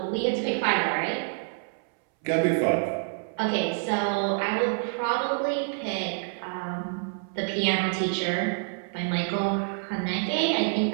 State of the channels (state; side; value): silent; left; 60 dB below the other